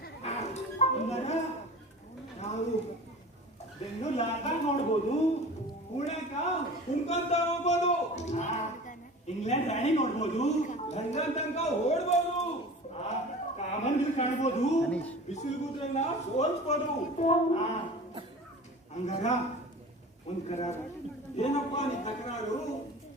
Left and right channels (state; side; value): normal; both; correlation 0.38